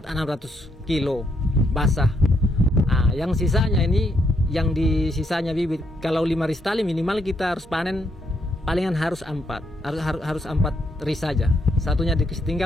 600 kilo basah. Yang sisanya ini yang di sisanya bibit. Kalau 5 ris tali minimal kita harus panen palingan harus 4 ris saja. Satunya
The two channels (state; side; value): normal; both; correlation 0.76